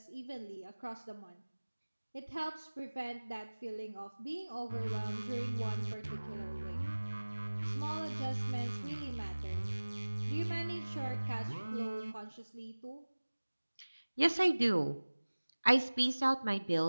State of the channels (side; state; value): both; inverted; correlation -1.00